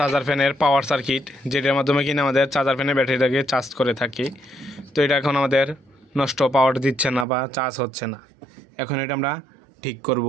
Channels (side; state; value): left; drops out; at 7.2 s